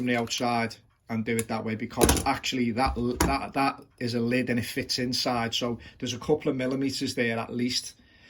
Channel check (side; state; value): both; identical; correlation 1.00